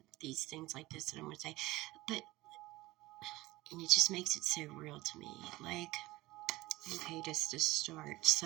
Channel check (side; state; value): left; quieter; 18.9 dB